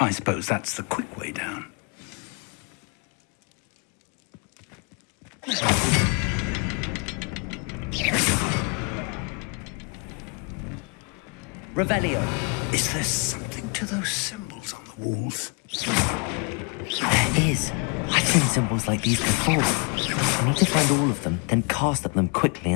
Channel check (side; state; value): right; quieter; 35.4 dB